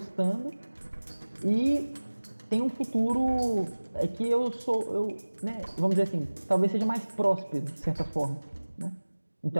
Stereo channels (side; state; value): both; inverted; correlation -1.00